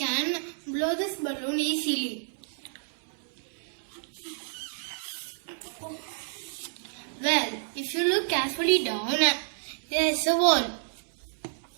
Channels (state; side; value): silent; left; digital silence